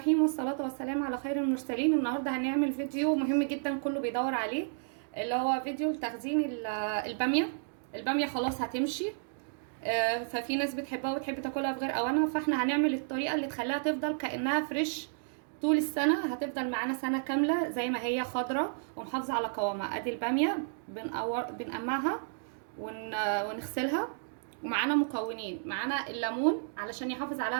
والصلاه والسلام على خير المرسلين. النهارده هنعمل فيديو مهم جدا كله بيدور عليه، اللي هو فيديو لتخزين الباميه. الباميه خلاص هتمشي، ففي ناس بتحبها وتحب تاكلها في غير اوانها، فاحنا هنعمل الطريقه اللي تخليها تفضل كانها فريش طول السنه. هتفضل معانا سنه كامله زي ما هي خضره ومحافظه على قوامها. ادي الباميه بنقمعها ونغسلها. ومعانا مكونين، معانا الليمون علشان يحافظ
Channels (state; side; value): silent; left; digital silence